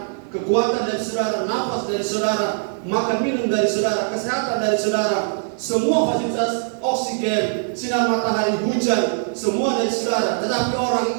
kekuatan dari saudara, nafas dari saudara, makan minum dari saudara, kesehatan dari saudara. Semua fasilitas oksigen, sinar matahari, hujan, semua dari saudara. Tetapi orang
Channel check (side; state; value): left; silent; 65 dB below the other